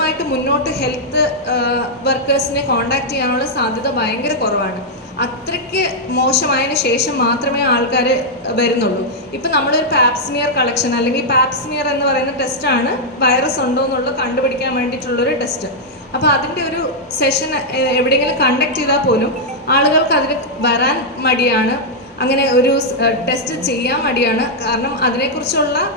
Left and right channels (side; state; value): both; normal; correlation -0.04